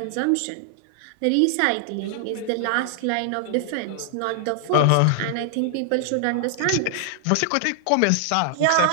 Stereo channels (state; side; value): different; both; correlation 0.00